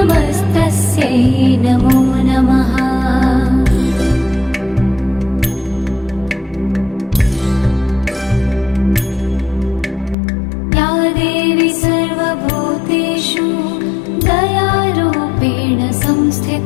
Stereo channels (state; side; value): drops out; right; at 10.2 s